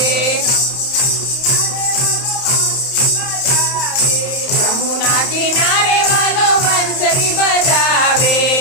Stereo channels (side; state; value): right; late; 31 ms